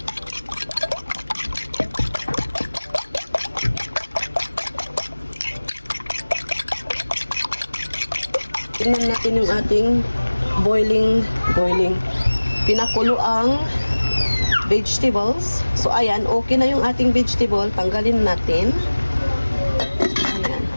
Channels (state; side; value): inverted; both; correlation -1.00